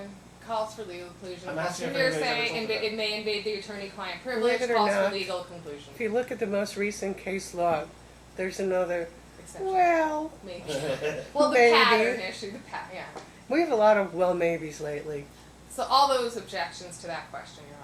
Calls for legal conclusion. I'm Calls asking for if anybody's ever hearsay. told you that. It may invade the attorney-client privilege. Believe it or Calls for not, legal conclusion. If you look at the most recent case law, there's another, Exception. well, Maybe. Well, the Maybe. pattern issue. Yeah. we have a lot of well maybes lately. So all those objections to that question, Your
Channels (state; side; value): identical; both; correlation 1.00